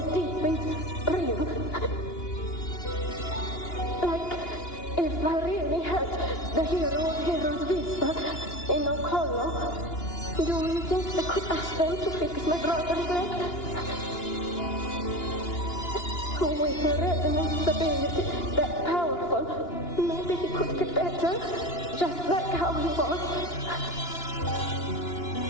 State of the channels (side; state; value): right; late; 2.9 ms